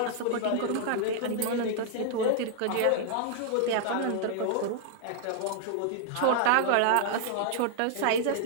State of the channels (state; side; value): different; both; correlation -0.01